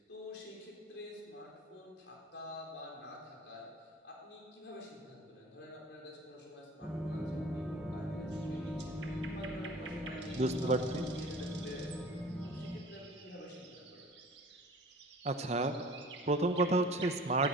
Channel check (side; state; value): both; normal; correlation 0.44